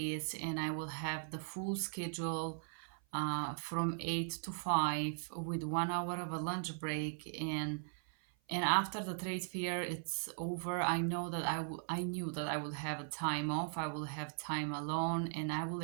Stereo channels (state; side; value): silent; left; 52 dB below the other